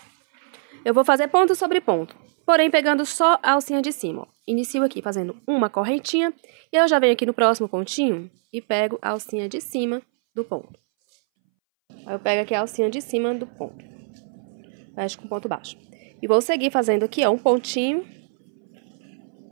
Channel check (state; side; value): silent; left; 62 dB below the other